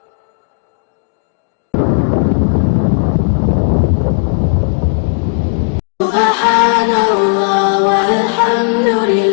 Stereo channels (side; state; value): right; silent; digital silence